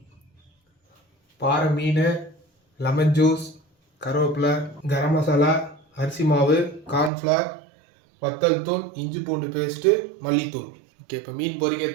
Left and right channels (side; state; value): left; drops out; at 7.1 s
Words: பாறை மீன், லெமன் ஜூஸ், கருவேப்பிலை, கரம் மசாலா, அரிசி மாவு, கார்ன்ஃப்ளவர், வத்தல் தூள், இஞ்சி பூண்டு பேஸ்ட்டு, மல்லித்தூள். ஓகே, இப்போ மீன்